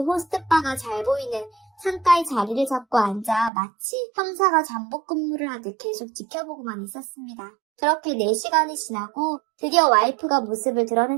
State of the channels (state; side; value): drops out; left; at 3.5 s